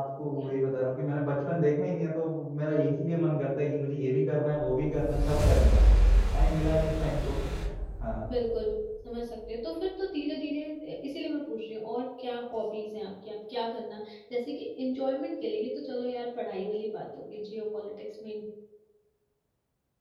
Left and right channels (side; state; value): both; identical; correlation 1.00